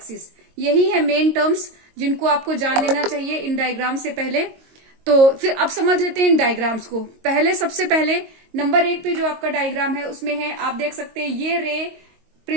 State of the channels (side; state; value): left; late; 22 ms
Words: यही है मेन टर्म्स जिनको आपको जान लेना चाहिए इन डायग्राम से पहले। तो फिर अब समझ लेते हैं इन डायग्राम्स को। सबसे पहले नंबर 1 पे जो आपका डायग्राम है उसमें है, आप देख सकते हैं ये रे